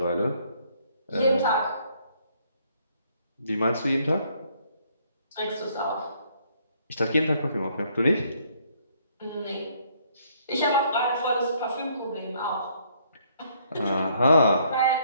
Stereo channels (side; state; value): both; inverted; correlation -0.66